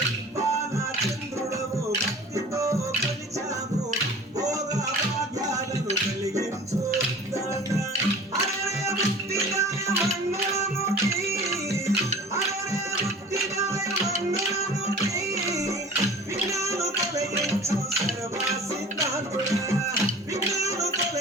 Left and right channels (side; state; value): both; normal; correlation 0.43